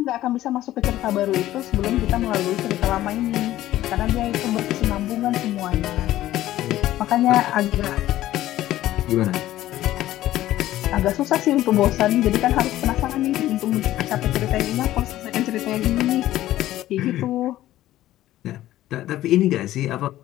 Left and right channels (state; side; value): quieter; right; 14.4 dB